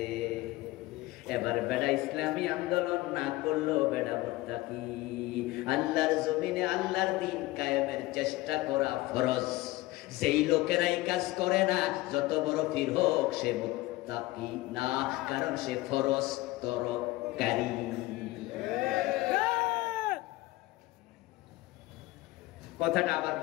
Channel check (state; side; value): quieter; right; 19.2 dB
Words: এবার বেড়া ইসলামী আন্দোলন না করলো বেড়া মুত্তাকি। আল্লাহর জমিনে আল্লাহর দ্বীন কায়েমের চেষ্টা করা ফরজ। যেই লোকেরাই কাজ করে না, যত বড় পীর হোক, সে মুত্তাকি না, কারণ সে ফরজ তরকারি। কথাটা আবার